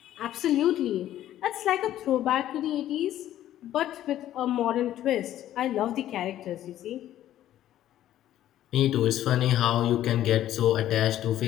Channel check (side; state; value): right; quieter; 12.6 dB